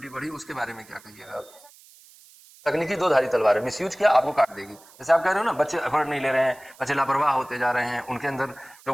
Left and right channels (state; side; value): noise; right; hiss, 24 dB below the sound